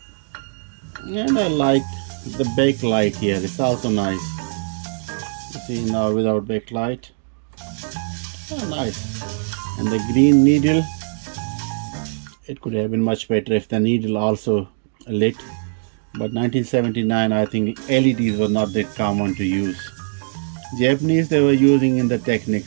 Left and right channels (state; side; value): silent; left; digital silence